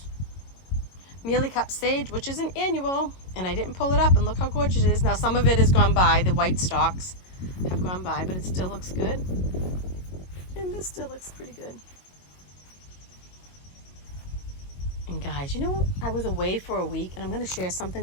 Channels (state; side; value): late; right; 22 ms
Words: mealy cup sage, which is an annual, and I didn't pull it up, and look how gorgeous it is. Now some of it has gone by, the white stalks have gone by, but it still looks good. And this still looks pretty good. And guys, you know, I was away for a week, and I'm going to share